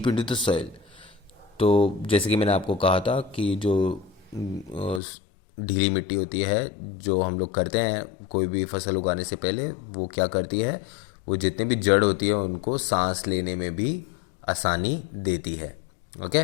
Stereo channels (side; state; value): right; drops out; at 5.0 s